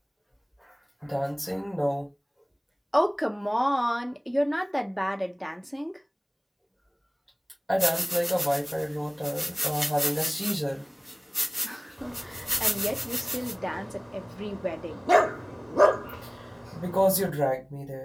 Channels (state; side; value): identical; both; correlation 1.00